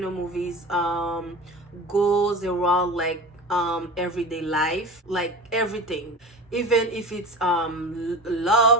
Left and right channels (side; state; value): both; normal; correlation 0.34